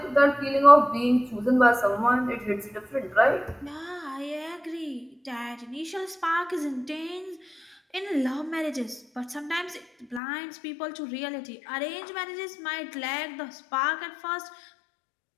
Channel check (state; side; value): drops out; right; at 10.2 s